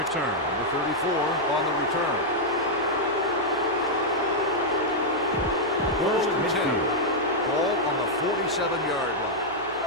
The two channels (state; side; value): noise; left; hum, 24 dB below the sound